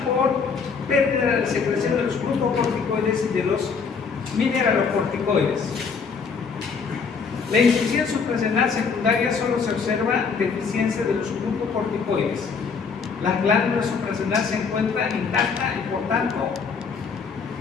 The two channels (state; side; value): quieter; right; 5.5 dB